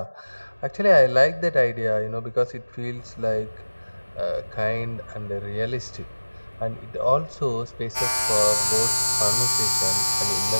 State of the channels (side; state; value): both; inverted; correlation -1.00